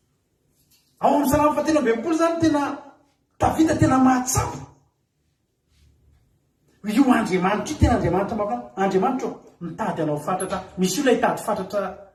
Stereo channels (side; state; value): both; identical; correlation 1.00